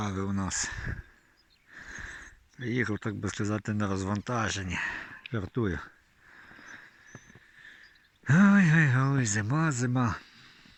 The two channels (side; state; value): both; identical; correlation 1.00